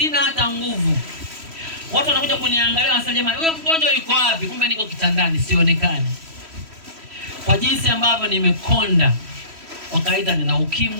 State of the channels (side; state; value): left; late; 3.1 ms